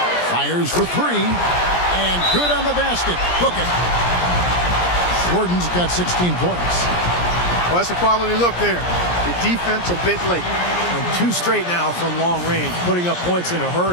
Fires for 3. And good on the basket. Book it. Gordon's got 16 points. Well, that's a quality look there. The defense a bit late. And 2 straight now from long range, putting up points in a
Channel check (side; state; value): right; late; 17 ms